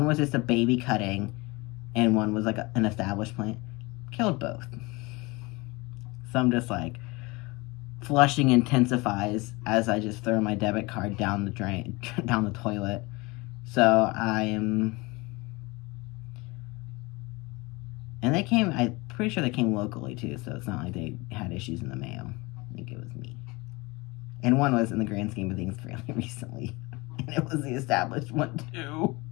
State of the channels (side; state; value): right; quieter; 24.4 dB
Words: was just a baby cutting, and one was like an established plant. Killed both. So I'm just like, flushing intensifies as I just throw my debit card down the drain, down the toilet. So I am, and they came, I'm pretty sure they came locally too, so it's not like they had issues in the mail. I think it was me. And one was, in the grand scheme of things, fairly recently. And it was the established one too.